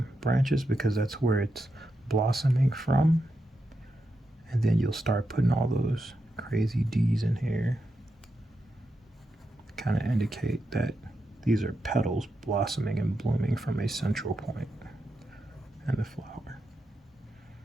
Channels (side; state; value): both; normal; correlation 0.86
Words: branches because that's where it's blossoming from. And then you'll start putting all those crazy D's in here. Kind of indicate that these are petals blossoming and blooming from a central point in the flower.